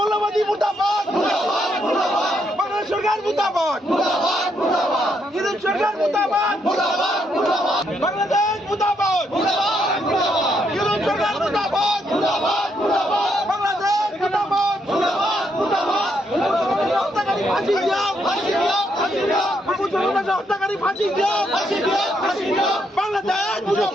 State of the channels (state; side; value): normal; both; correlation 0.76